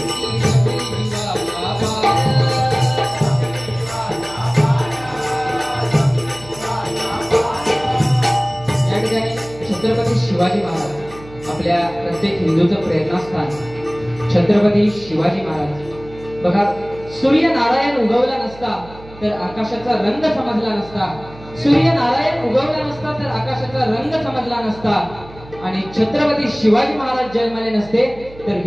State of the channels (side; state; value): right; noise; hum, 19 dB below the sound